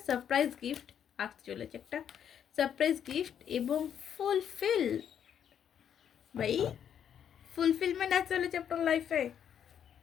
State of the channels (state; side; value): quieter; right; 8.9 dB